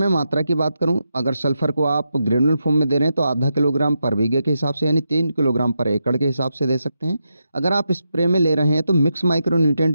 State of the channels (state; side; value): inverted; both; correlation -0.85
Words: मात्रा की बात करूं, अगर सल्फर को आप ग्रेनुअल फॉर्म में दे रहे हैं तो आधा किलोग्राम पर बीघे के हिसाब से यानी 3 किलोग्राम पर एकड़ के हिसाब से दे सकते हैं। अगर आप स्प्रे में ले रहे हैं तो मिक्स